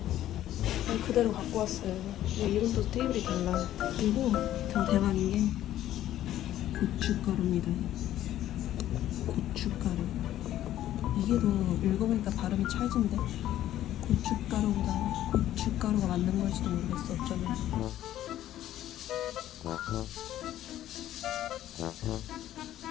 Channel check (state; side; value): quieter; right; 12.8 dB